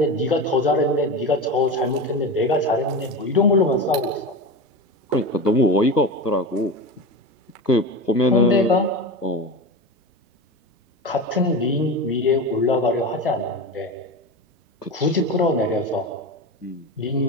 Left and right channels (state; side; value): normal; both; correlation 0.24